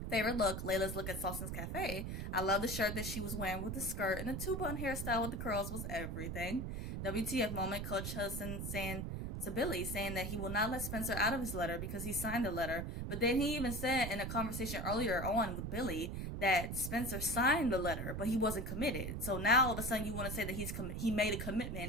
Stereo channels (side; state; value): right; noise; rumble, 4 dB below the sound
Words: Favorite look, Layla'S look at Salson's Cafe. I love the shirt that she was wearing with the skirt, and the two-bun hairstyle with the curls was everything. WTF moment, Coach Hudson saying to Billy, saying that he will not let Spencer out of his letter because he signed the letter. But then he even said in a conversation earlier on with Billy that Spencer signed the letter, but he wasn't committed. So now all of a sudden you want to say that he made a